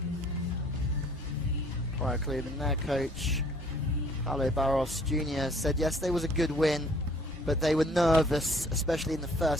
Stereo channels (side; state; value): both; normal; correlation 0.57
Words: Praia Clube, and their coach, Carli Lloyd Jr., said yesterday was a good win, but they were nervous, especially in the